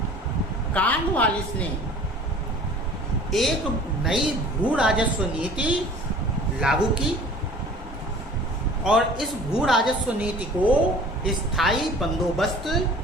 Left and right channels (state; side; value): normal; both; correlation 0.46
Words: कॉर्नवालिस ने एक नई भू राजस्व नीति लागू की और इस भू राजस्व नीति को स्थायी बंदोबस्त